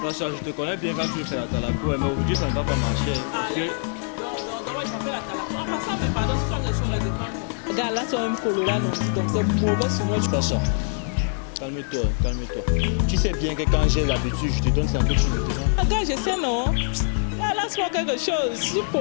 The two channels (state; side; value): silent; right; 58 dB below the other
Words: Sacha, je te connais bien quand tu veux faire la talaco, mais aujourd'hui ça ne va pas marcher. Parce que... Donc, moi, je m'appelle Atalako. En passant, mais pardon, si tu as des choses là, dépend moi. Gars, là, c'est un colo là, non dit, donc c'est mauvais sur moi. Sacha, calme-toi. Tu sais bien que quand j'ai l'habitude, je te donne sans que tu me demandes. Ah, gars, je sais, non? Ah, lance-moi quelque chose, si tu